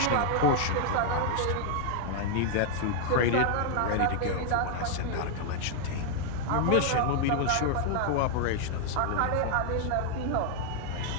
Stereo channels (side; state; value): both; different; correlation 0.00